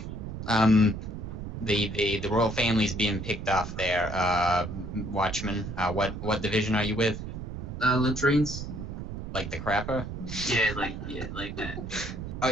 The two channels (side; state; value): right; noise; rumble, 7 dB below the sound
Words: kill me. The royal family's being picked off there. Watchman, what division are you with? Latrines? Like the crapper? Yeah, like that.